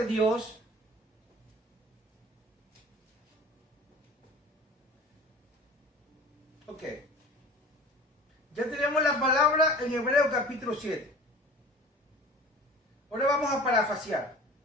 Dios. Ok. Ya tenemos la palabra en Hebreos capítulo 7. Ahora vamos a parafrasear.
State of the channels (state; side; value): normal; both; correlation 0.41